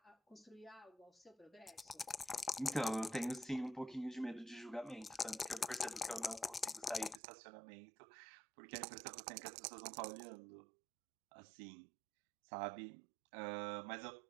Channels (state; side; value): drops out; left; at 7.2 s